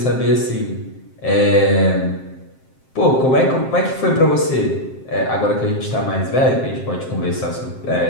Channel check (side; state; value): right; late; 7.6 ms